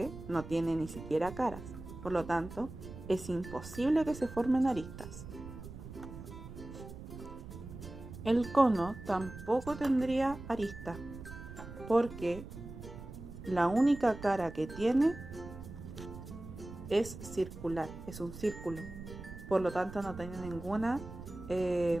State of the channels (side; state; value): right; noise; rumble, 12 dB below the sound